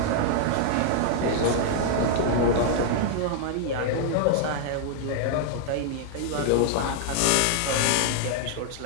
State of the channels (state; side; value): different; both; correlation 0.00